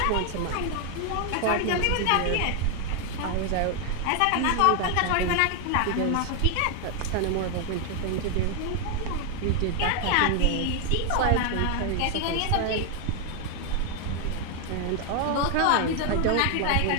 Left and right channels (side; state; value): both; different; correlation 0.00